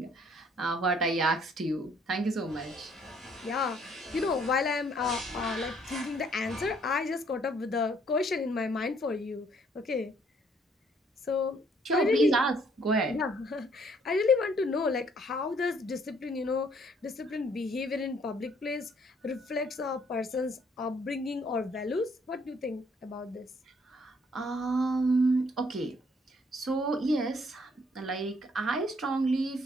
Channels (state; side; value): normal; both; correlation 0.64